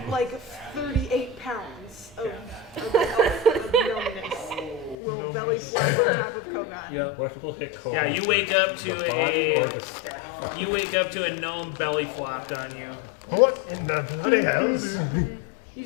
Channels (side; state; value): right; drops out; at 5.0 s